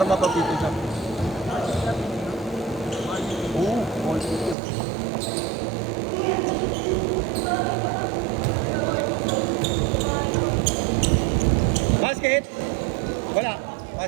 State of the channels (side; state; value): left; drops out; at 4.5 s